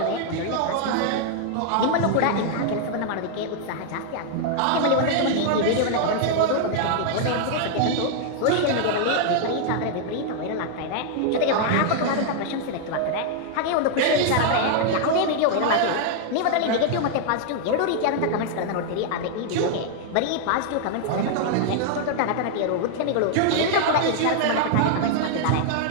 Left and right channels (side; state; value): both; different; correlation -0.01